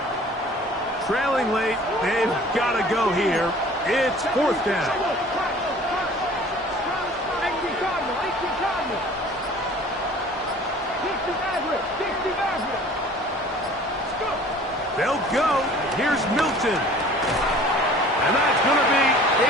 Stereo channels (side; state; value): both; normal; correlation 0.48